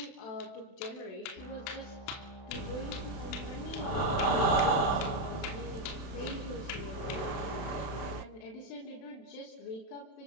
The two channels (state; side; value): late; right; 31 ms